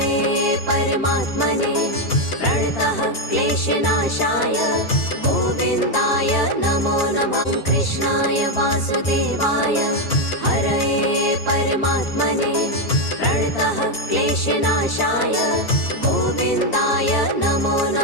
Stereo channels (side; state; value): right; late; 4.4 ms